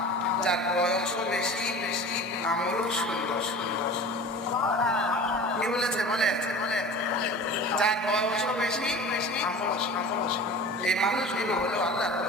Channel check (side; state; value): both; normal; correlation 0.38